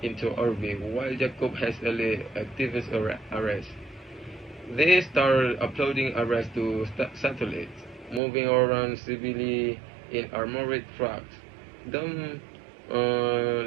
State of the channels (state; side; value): drops out; left; at 8.2 s